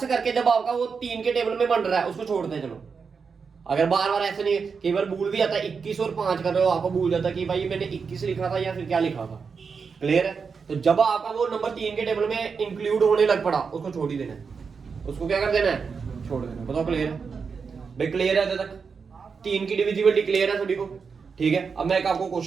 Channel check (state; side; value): quieter; left; 5.5 dB